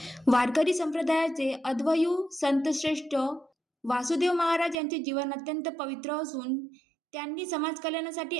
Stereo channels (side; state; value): left; drops out; at 4.8 s